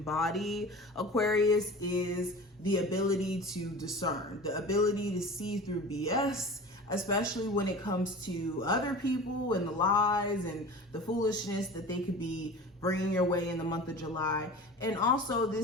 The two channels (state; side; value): normal; both; correlation 0.36